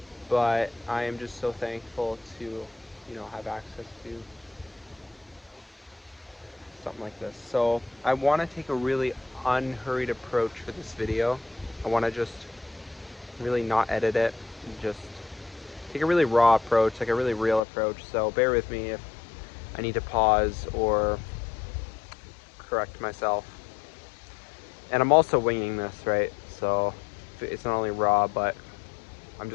but I am just so thankful to, have access to something like this. So I want to take a really unhurried approach for this video. I want to just really not edit it, and just take a really raw approach, like a really real approach. So bear with me if I need to pause or correct myself. And I'm also winging this, right? So it's not only raw, but I'm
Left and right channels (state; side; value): drops out; right; at 17.6 s